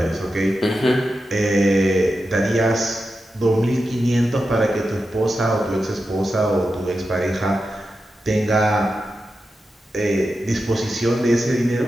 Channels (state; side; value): normal; both; correlation 0.90